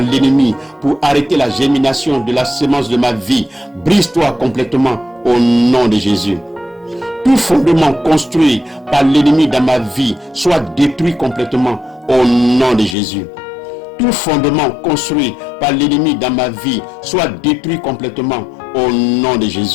l'ennemi pour arrêter la germination de la semence de ma vie, brise-toi complètement au nom de Jésus. Tout fondement construit par l'ennemi dans ma vie soit détruit complètement au nom de Jésus. Tout fondement construit par l'ennemi dans ma vie soit détruit complètement au nom de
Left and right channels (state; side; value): drops out; right; at 13.0 s